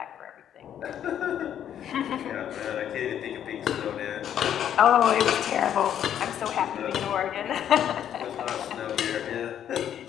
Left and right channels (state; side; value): quieter; right; 9.9 dB